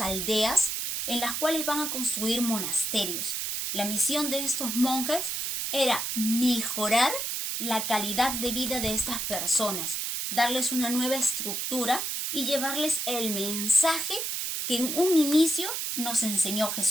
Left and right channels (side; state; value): right; noise; hiss, 2 dB below the sound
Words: en las cuales van a construir monasterios. La misión de estos monjes era mejorar la calidad de vida de estas personas, darles una nueva estructura y llevarles el mensaje que en un inicio nos enseñó